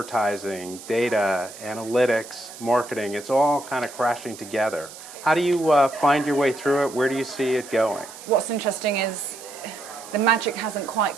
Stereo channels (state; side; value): noise; right; hiss, 16 dB below the sound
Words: data, analytics, marketing, it's all kind of crashing together. How do you find your way through it? Where do you see it going? What's interesting is the magic hasn't